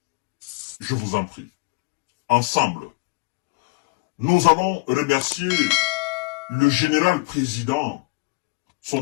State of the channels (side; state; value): right; quieter; 27.1 dB